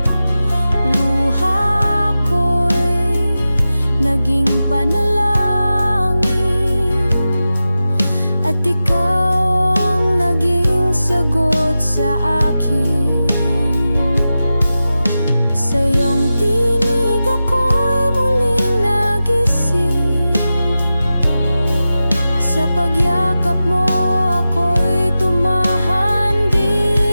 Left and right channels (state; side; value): inverted; both; correlation -0.93